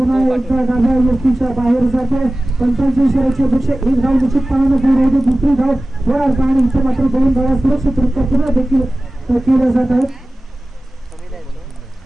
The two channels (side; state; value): both; normal; correlation 0.96